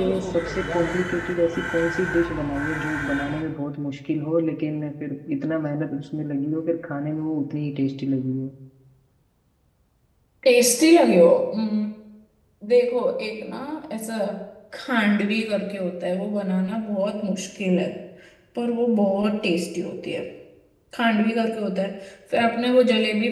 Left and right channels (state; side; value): identical; both; correlation 1.00